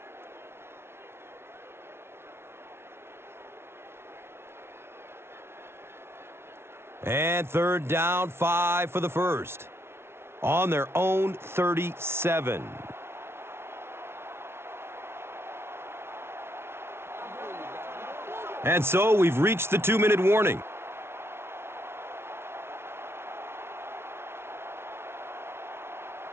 And third down, 5 for the first. On their own 37. And so we've reached the 2-minute warning.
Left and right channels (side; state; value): left; late; 0.12 ms